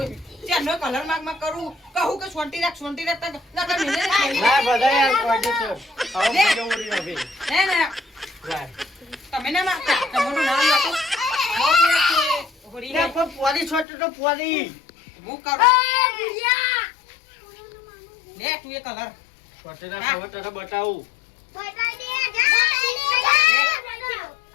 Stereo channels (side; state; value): right; drops out; at 13.9 s